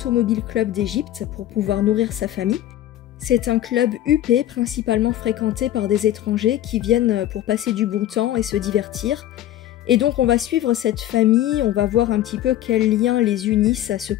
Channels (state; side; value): quieter; right; 12.8 dB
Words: Club d'Égypte pour pouvoir nourrir sa famille. C'est un club huppé, principalement fréquenté par des étrangers qui viennent pour passer du bon temps et se divertir. Et donc on va suivre cette famille, on va voir un petit peu quels liens les unissent à ce